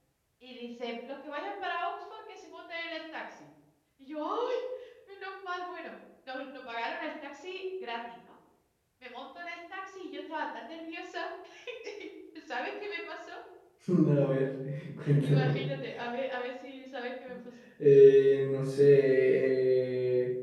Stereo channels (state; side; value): identical; both; correlation 1.00